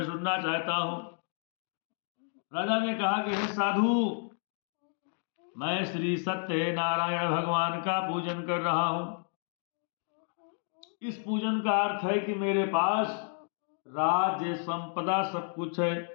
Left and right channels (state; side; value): silent; right; 57 dB below the other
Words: सुनना चाहता हूं। राजा ने कहा कि हे साधु, मैं श्री सत्य नारायण भगवान का पूजन कर रहा हूं। इस पूजन का अर्थ है कि मेरे पास राज्य संपदा सब कुछ है,